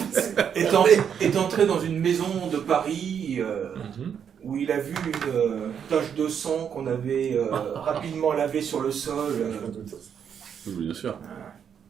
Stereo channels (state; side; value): quieter; left; 7.9 dB